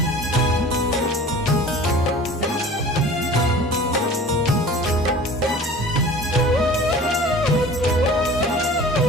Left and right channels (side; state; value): both; normal; correlation 0.42